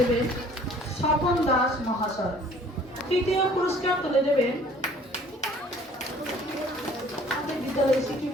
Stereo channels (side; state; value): both; normal; correlation 0.53